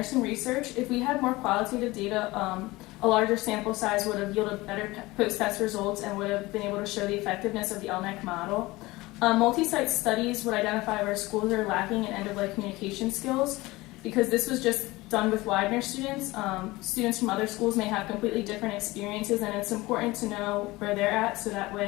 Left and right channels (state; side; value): quieter; right; 20.5 dB